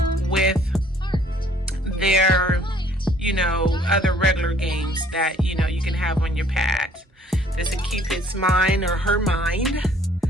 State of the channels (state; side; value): normal; both; correlation 0.59